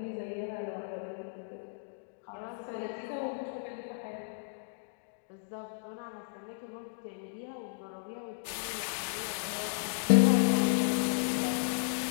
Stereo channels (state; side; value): silent; right; digital silence